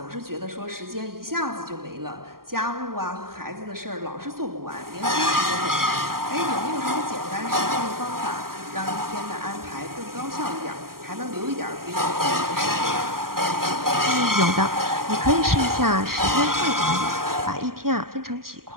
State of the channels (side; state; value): left; late; 0.92 ms